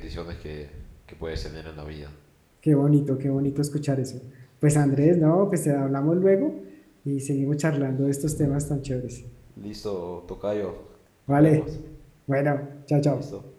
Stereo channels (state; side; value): identical; both; correlation 1.00